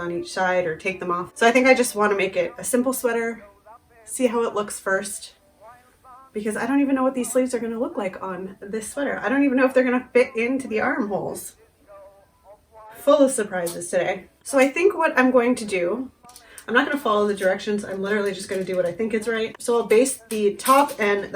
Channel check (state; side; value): identical; both; correlation 1.00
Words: each side or take them off. So I think I just want to make it a simple sweater, see how it looks first, because I don't even know what these sleeves are going to look like on this sweater. I don't even know if they're going to fit into the armholes. Full of surprises today. So I think what I'm going to do, I'm not going to follow the directions. I'm literally just going to do what I think is right. So I'll base the top and